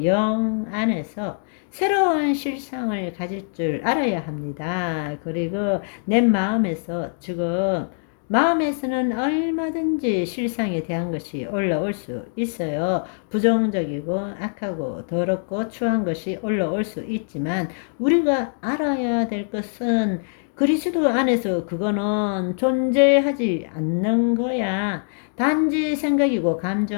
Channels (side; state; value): right; silent; 63 dB below the other